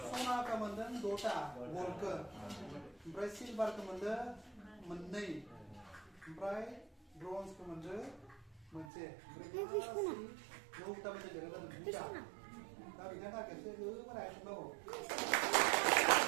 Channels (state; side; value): drops out; left; at 8.9 s